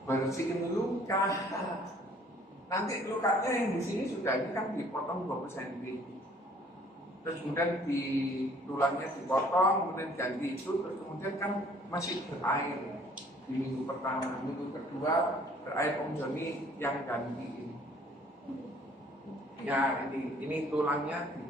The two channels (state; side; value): normal; both; correlation 0.57